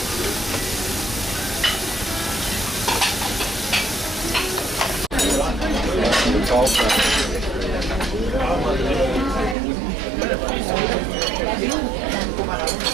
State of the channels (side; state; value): left; drops out; at 9.6 s